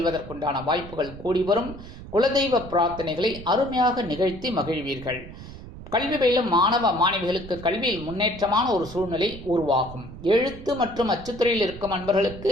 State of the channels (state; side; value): noise; right; rumble, 14 dB below the sound